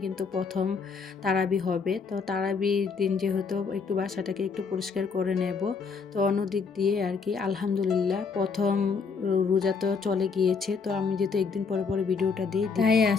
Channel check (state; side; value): quieter; right; 5.2 dB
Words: কিন্তু প্রথম তারাবি হবে। তো তারাবির দিন যেহেতু একটু বাসাটাকে একটু পরিষ্কার করে নেব। তো অন্যদিক দিয়ে আর কি আলহামদুলিল্লাহ প্রথম রোজা তো চলে গিয়েছে। তো আমি যেহেতু একদিন পরে পরে ভিডিওটা দিই, তাই